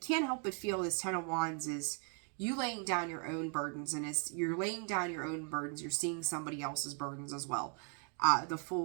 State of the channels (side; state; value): left; quieter; 39.6 dB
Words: help but feel this 10 of Wands is you laying down your own burdens. And as you're laying down your own burdens, you're seeing somebody else's burdens as well. The